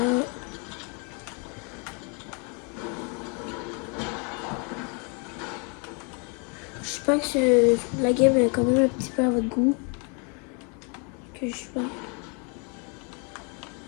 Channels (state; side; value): quieter; right; 35.2 dB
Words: J'espère que la game est quand même un petit peu à votre goût. Que je sais pas.